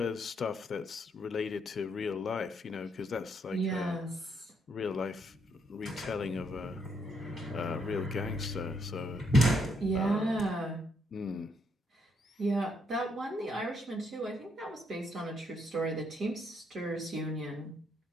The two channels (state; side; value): normal; both; correlation 0.74